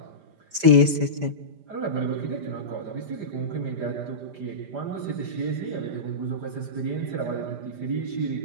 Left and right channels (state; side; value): late; left; 5.0 ms